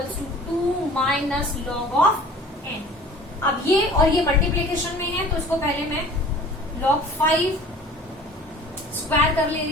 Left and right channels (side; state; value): both; normal; correlation 0.46